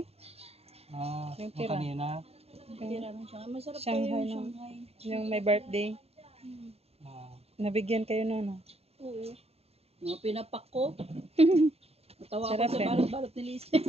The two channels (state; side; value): late; left; 0.29 ms